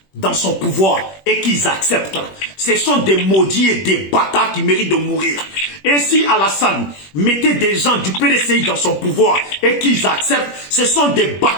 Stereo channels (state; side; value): late; right; 21 ms